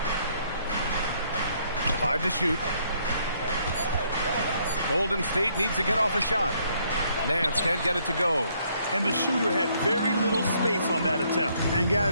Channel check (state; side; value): inverted; both; correlation -0.68